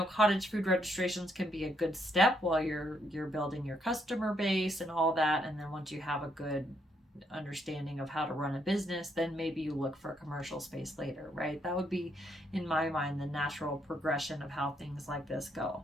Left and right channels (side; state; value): both; normal; correlation 0.74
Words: cottage food registrations can be a good step while you're building your customer base and all that. And then once you have a good understanding of how to run a business, then maybe you look for a commercial space later, right? That would be, in my mind, the natural progression of how things like this go.